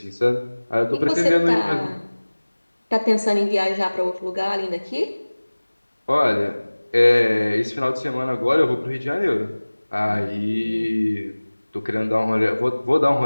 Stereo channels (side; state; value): both; inverted; correlation -1.00